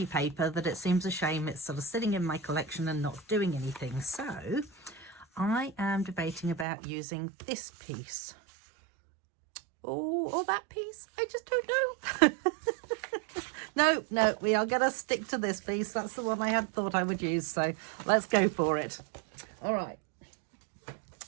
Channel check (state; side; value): drops out; left; at 6.7 s